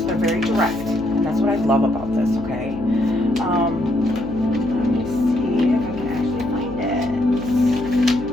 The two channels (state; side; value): noise; left; hum, 13 dB below the sound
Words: they're very direct, and that's what I love about this. Okay, let me see if I can actually find it.